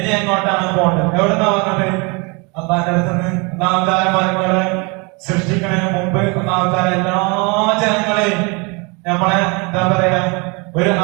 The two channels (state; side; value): quieter; left; 29.9 dB